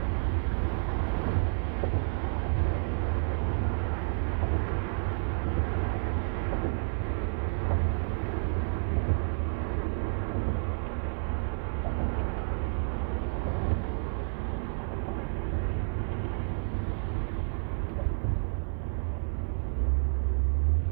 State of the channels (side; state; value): left; silent; 58 dB below the other